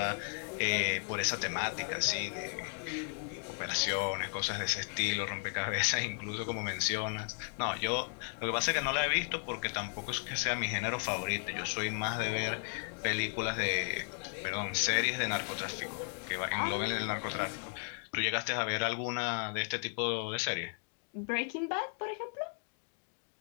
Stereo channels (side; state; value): right; silent; 54 dB below the other